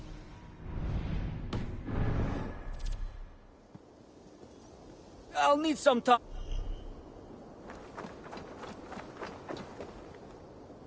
I'll need some time.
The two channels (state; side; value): identical; both; correlation 1.00